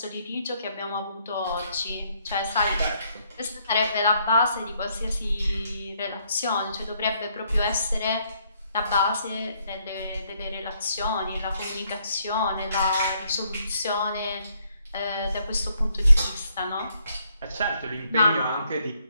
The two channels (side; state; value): both; inverted; correlation -0.71